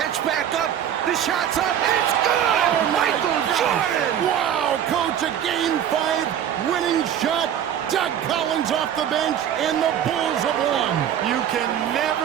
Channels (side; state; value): left; quieter; 9.7 dB